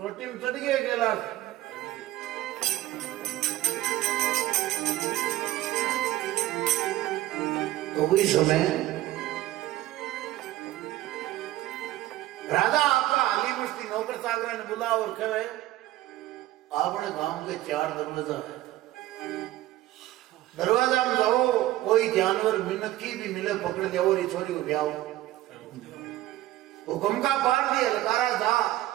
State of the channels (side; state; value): left; quieter; 15.3 dB